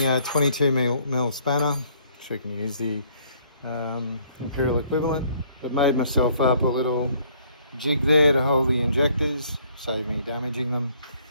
a 22mm spanner, so you can use the imperial equivalent. I've made myself up a little jig there to hold the injectors, save me damaging them.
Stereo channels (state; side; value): inverted; both; correlation -0.63